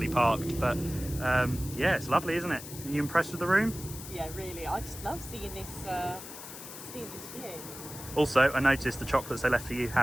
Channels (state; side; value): noise; left; hiss, 12 dB below the sound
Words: parked. But yeah, it's lovely, isn't it? Are you impressed with the room? Yeah, really. I just love seeing this view. Also, I noticed the chocolates they left for you